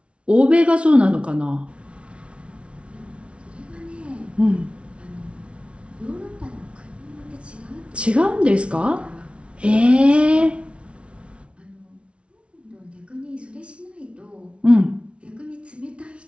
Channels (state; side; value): late; left; 0.060 ms